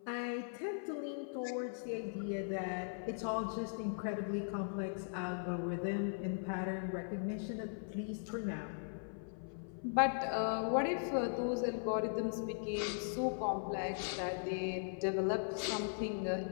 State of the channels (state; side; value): silent; right; 52 dB below the other